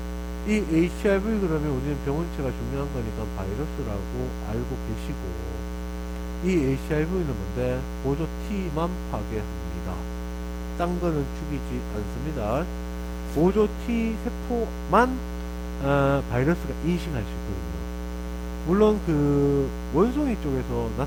이 HIV 그러면 우리는 병원체가 중요한 거니까 바이러스라고 알고 계시고, 이 HIV는 뭔데? 보조 T만 파괴합니다. 딴 거는 죽이지 않습니다. 보조 T 세포만 바이러스가 인식할 수 있거든요. 물론 그 원숭이 쪽에서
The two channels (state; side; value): identical; both; correlation 1.00